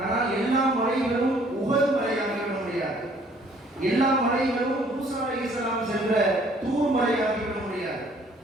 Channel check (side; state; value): both; normal; correlation 0.59